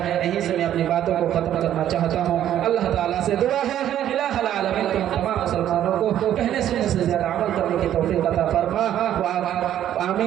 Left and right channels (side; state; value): left; quieter; 11.3 dB